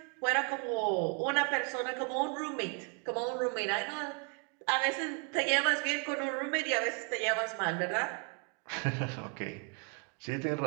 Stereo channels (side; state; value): left; quieter; 35.9 dB